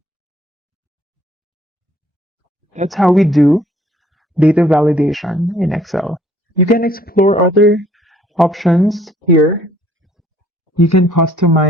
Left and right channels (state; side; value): normal; both; correlation 0.60